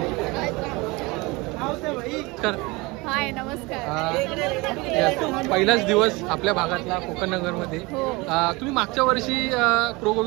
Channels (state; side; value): quieter; left; 24.3 dB